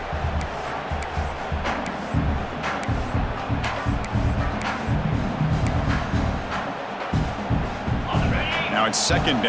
Now it's second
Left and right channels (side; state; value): both; identical; correlation 1.00